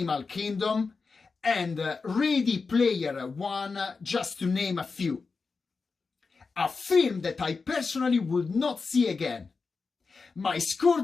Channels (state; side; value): quieter; right; 4.6 dB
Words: Kingdom and Ready Player One, just to name a few. A film that I personally would not see again. My score